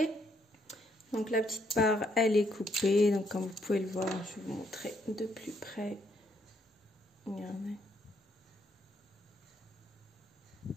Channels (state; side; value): normal; both; correlation 0.72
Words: Donc la petite part, elle est coupée. Donc comme vous pouvez le voir, je vais vous montrer de plus près. Regardez.